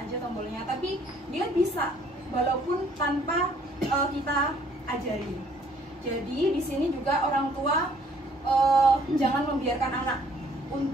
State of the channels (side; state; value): both; normal; correlation 0.61